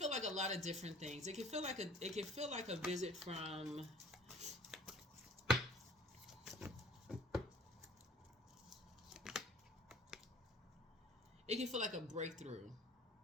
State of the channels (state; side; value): normal; both; correlation 0.51